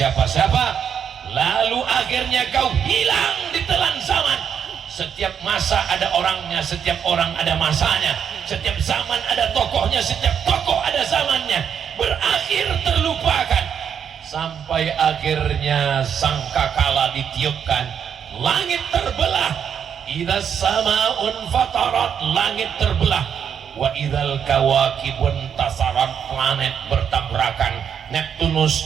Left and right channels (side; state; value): left; quieter; 7.9 dB